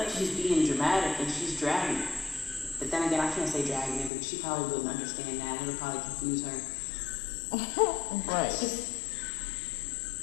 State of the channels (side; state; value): right; drops out; at 4.1 s